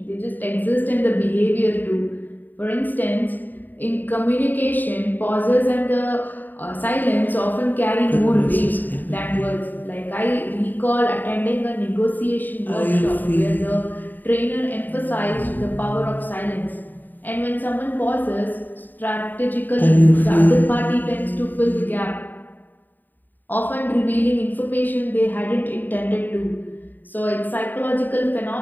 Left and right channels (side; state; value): right; late; 0.088 ms